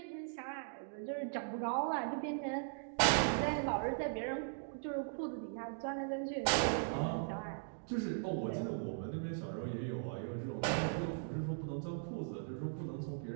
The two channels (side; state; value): left; silent; digital silence